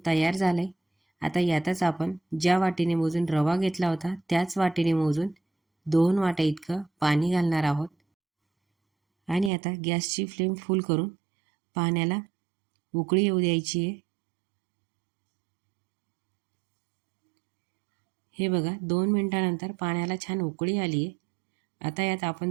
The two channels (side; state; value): left; drops out; at 9.5 s